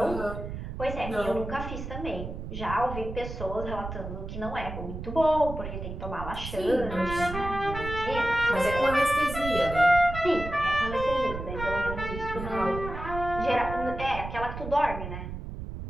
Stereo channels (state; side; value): noise; right; rumble, 8 dB below the sound